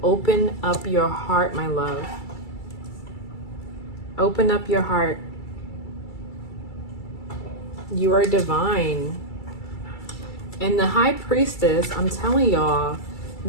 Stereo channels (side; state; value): right; late; 2.3 ms